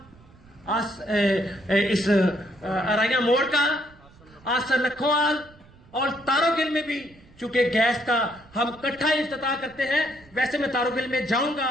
इस अराइया मोड़ का, आसर लखोवाल और तारोगिल में भी चूंकि गैस का हम इकट्ठा इफ्तिताह करते हैं, वैसे मैं तारोगिल में जाऊंगा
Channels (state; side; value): noise; right; rumble, 26 dB below the sound